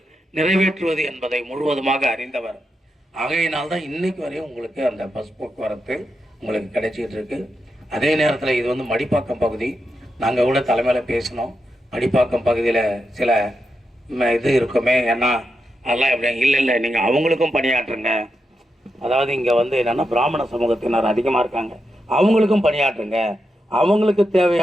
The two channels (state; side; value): normal; both; correlation 0.86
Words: நிறைவேற்றுவது என்பதை முழுவதுமாக அறிந்தவர். ஆகையினால்தான் இன்னைக்கு வரையும் உங்களுக்கு அந்த பஸ் போக்குவரத்து உங்களுக்கு கிடைச்சிக்கிட்டு இருக்கு. அதே நேரத்தில் இது மடிப்பாக்கம் பகுதி. நாங்கள் கூட தலைமையில் பேசினோம். மடிப்பாக்கம் பகுதியில் சில இது இருக்குமே, ஏன்னா அதெல்லாம் எப்படி இல்லை நீங்கள் அவங்களுக்கும் பணியாற்றுங்க. அதாவது இங்கே என்னென்னா பிராமண சமூகத்தினர் அதிகமாக இருக்காங்க, அவங்களுக்கும் பணியாற்றுங்க, அவங்களுக்கு